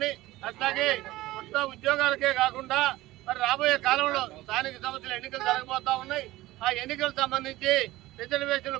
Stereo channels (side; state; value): left; quieter; 17.5 dB